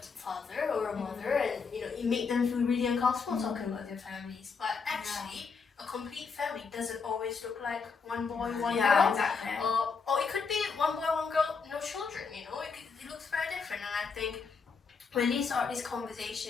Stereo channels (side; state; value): right; quieter; 5.2 dB